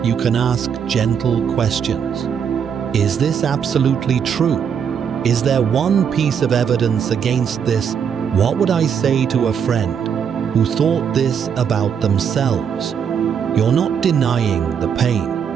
you can ask gentle questions. Is this absolutely true? Is there one piece of evidence against this? What would I say to a friend who thought this about themselves? You're not denying the pain.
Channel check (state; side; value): quieter; left; 7.5 dB